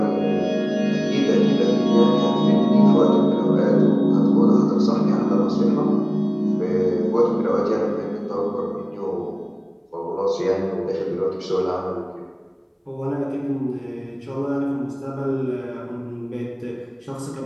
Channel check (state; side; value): identical; both; correlation 1.00